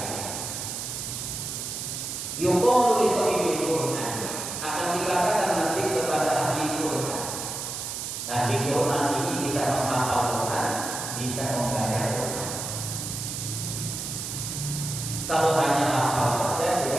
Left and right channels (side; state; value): right; noise; hiss, 5 dB below the sound